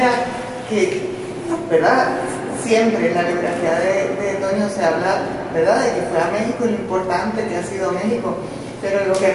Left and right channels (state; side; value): identical; both; correlation 1.00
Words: que, ¿verdad? Siempre en la biografía de Toño se habla, ¿verdad?, de que fue a México y lo importante que ha sido México. Pero lo que